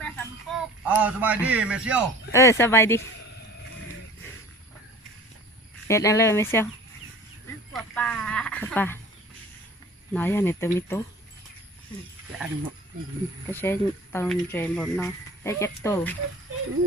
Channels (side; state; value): both; normal; correlation 0.44